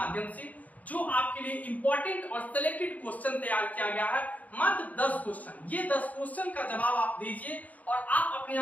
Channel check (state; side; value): late; right; 0.075 ms